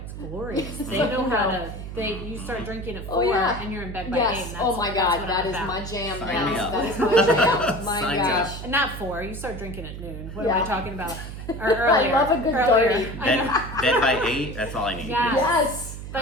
glorious. They know how to. You start drinking at 4 Oh, yeah. and you're in bed by 8. Yes. And Oh my that's God, what that I'm is about. my jam. Sign Yes, me up. that is my jam. My Sign me up. gosh. Not 4. You start drinking at noon. What am Yeah. I talking about? Or earlier. I love a good earlier. dirty. I know. Bed by 8, that's all I need. Yeah. Yes.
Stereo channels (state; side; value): noise; right; hum, 9 dB below the sound